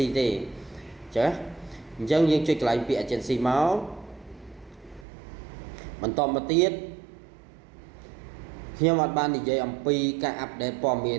ទេចាអញ្ចឹងយើងចុចកន្លែងពាក្យ agency មកបន្តមកទៀតខ្ញុំអត់បាននិយាយអំពីការអាប់ដេតព័ត៌មាន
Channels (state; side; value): drops out; left; at 5.1 s